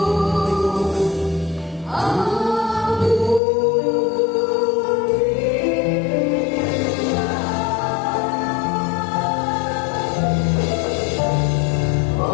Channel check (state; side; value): drops out; right; at 3.4 s